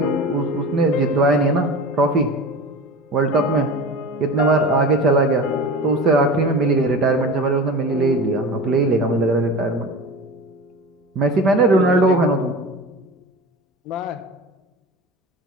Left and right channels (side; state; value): both; normal; correlation 0.33